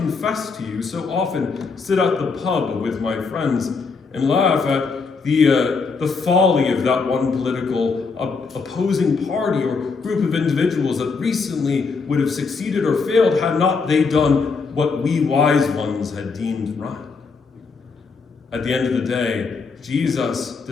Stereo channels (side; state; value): right; quieter; 4.7 dB